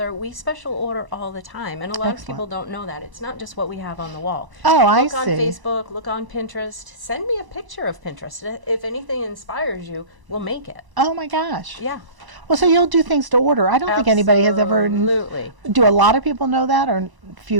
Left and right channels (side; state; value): left; late; 1.0 ms